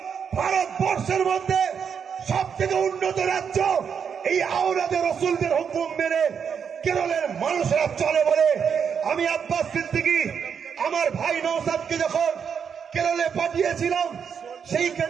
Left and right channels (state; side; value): quieter; left; 7.0 dB